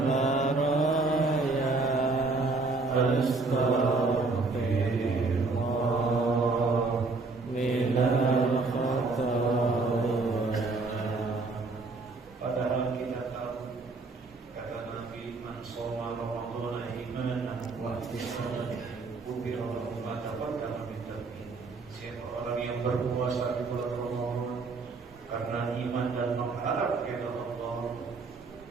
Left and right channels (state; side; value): quieter; left; 3.8 dB